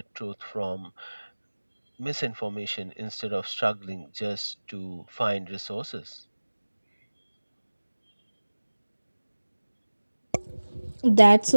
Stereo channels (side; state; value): both; inverted; correlation -1.00